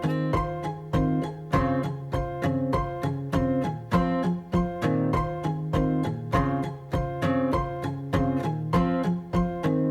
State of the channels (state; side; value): identical; both; correlation 1.00